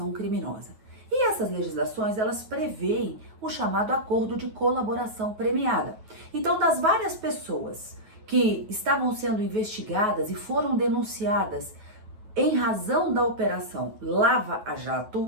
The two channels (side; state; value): left; late; 9.3 ms